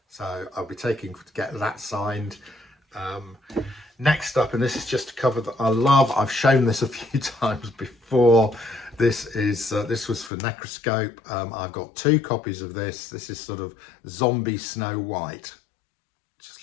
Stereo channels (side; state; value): right; drops out; at 10.3 s